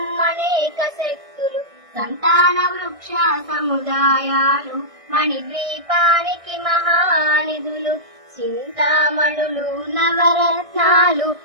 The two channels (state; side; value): late; left; 1.6 ms